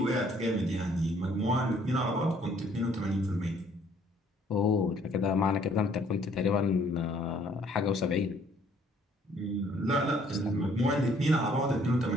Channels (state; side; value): normal; both; correlation 0.61